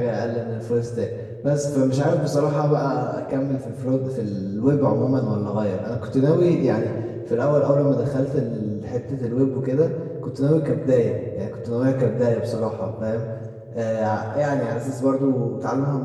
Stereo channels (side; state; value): both; identical; correlation 1.00